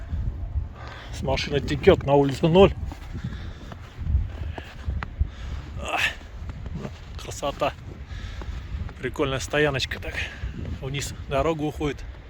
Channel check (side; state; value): both; identical; correlation 1.00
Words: С машины текет, на улице 0. Красота. Прикольная стояночка так. Вниз дорога уходит.